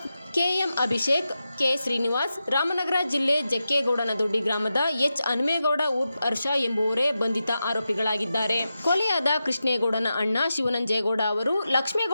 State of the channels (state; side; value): inverted; both; correlation -0.90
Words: KM. Abhishek, K. Srinivas, Ramanagara ಜಿಲ್ಲೆ ಜಕ್ಕೇಗೌಡನ ದೊಡ್ಡಿ ಗ್ರಾಮದ ಎಚ್. ಹನುಮೇಗೌಡ ಉರ್ಫ್ ಹರ್ಷ ಎಂಬುವರೇ ಬಂಧಿತ ಆರೋಪಿಗಳಾಗಿದ್ದಾರೆ. ಕೊಲೆಯಾದ ಕೃಷ್ಣೇಗೌಡನ ಅಣ್ಣ ಶಿವನಂಜೇಗೌಡ ಅವರು